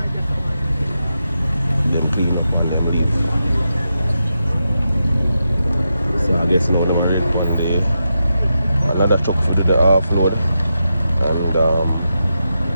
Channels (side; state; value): both; inverted; correlation -0.87